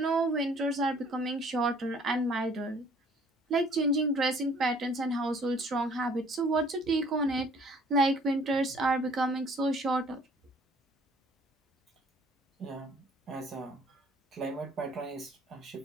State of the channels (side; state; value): both; normal; correlation 0.56